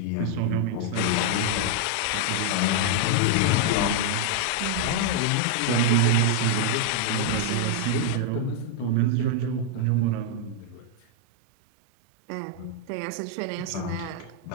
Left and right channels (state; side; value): different; both; correlation -0.01